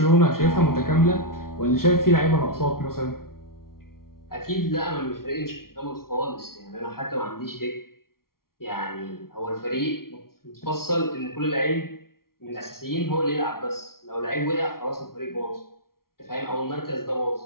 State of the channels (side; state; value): right; late; 0.93 ms